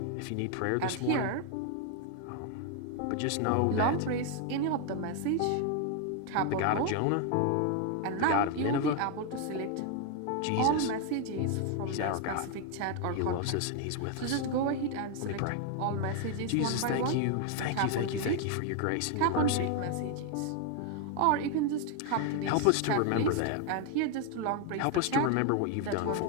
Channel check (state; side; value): different; both; correlation 0.01